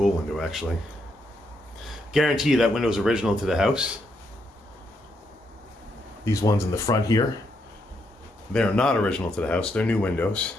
window, actually. Guarantee you that window is original to the house. These ones in the front here, they are not original to the house. They're new windows,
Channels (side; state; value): both; normal; correlation 0.78